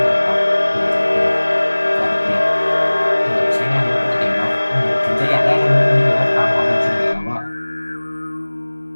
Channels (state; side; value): inverted; both; correlation -1.00